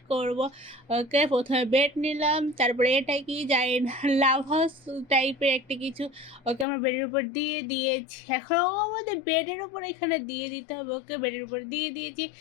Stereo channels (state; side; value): drops out; right; at 6.7 s